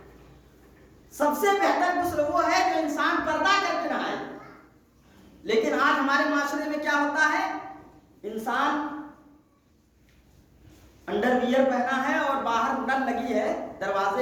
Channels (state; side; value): identical; both; correlation 1.00